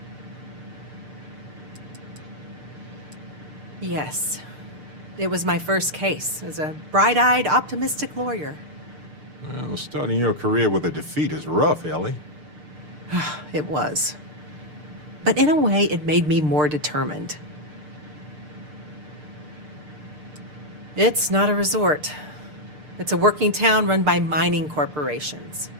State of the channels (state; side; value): late; left; 6.7 ms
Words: Yes. It was my first case as a bright-eyed, optimistic lawyer. Well, starting your career with a defeat is rough, Ellie. It was. But in a way, it made me more determined. It's not a resort. It's a working town run by mining corporations.